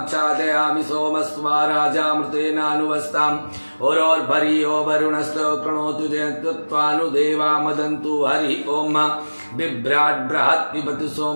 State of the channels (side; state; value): both; inverted; correlation -1.00